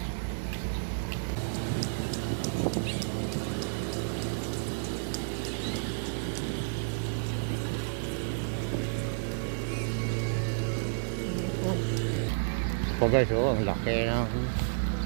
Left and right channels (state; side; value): silent; left; digital silence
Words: Po guys, oh, ang laki ng